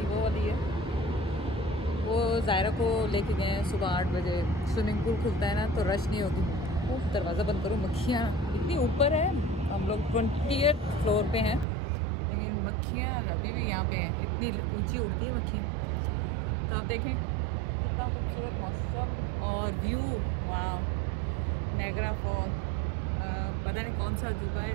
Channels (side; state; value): left; drops out; at 11.7 s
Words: वो वाली है, वो जायरा को लेके गए हैं सुबह 8 बजे। स्विमिंग पूल खुलता है ना तो रश नहीं होगी। दरवाज़ा बंद करो, मक्खियाँ इतनी ऊपर है। हम लोग 20th फ्लोर पे हैं, लेकिन मक्खियाँ अभी भी यहाँ पे हैं। इतनी ऊंची उड़ती है मक्खियाँ। तो आप देखें कितना खूबसूरत मौसम और व्यू। वहाँ नायग्रा फॉल, पता नहीं कौन सा अजूबा है,